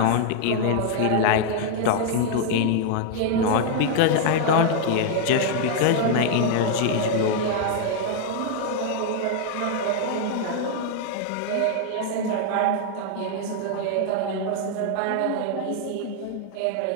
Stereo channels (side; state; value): both; different; correlation 0.00